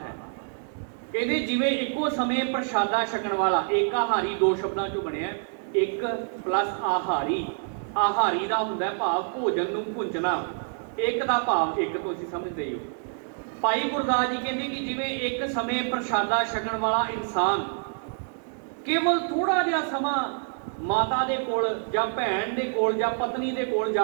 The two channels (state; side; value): silent; left; 60 dB below the other